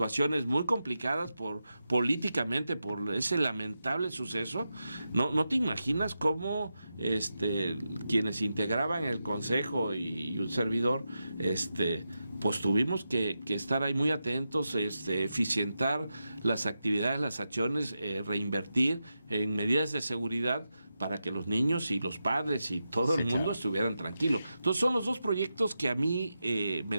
muy complicadas políticamente por ese lamentable suceso. No te imaginas cómo quienes integraban el consejo y un servidor pues tuvimos que estar ahí muy atentos, eficientar las actividades, las acciones, reinvertir en medidas de seguridad para que los niños y los padres y todo el mundo estuvieran tranquilos. Entonces son los dos proyectos que a mí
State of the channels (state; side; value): inverted; both; correlation -0.89